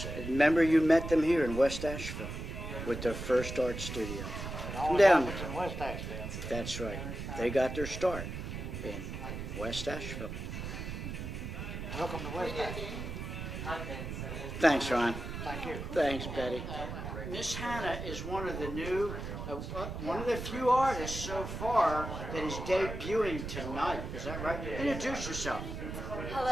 Remember you met them here in West Asheville with their first art studio. It Come only down. happens in West Asheville. That's right. They got their start in West Asheville. Welcome to West Asheville. Thanks, Ron. Thank you. Thanks, Betty. Miss Hannah is one of the one of the few artists so far that is debuting tonight. Is that right? Introduce yourself.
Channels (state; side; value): noise; right; rumble, 6 dB below the sound